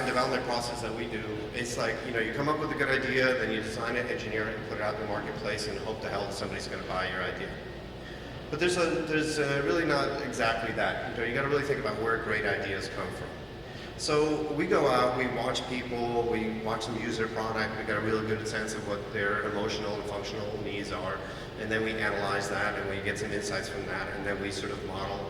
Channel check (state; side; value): identical; both; correlation 1.00